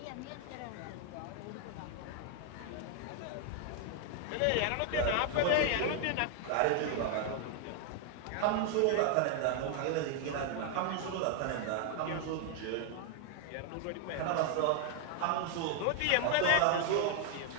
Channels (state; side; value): different; both; correlation 0.00